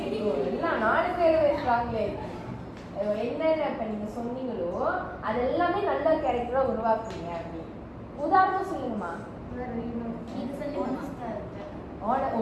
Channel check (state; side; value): identical; both; correlation 1.00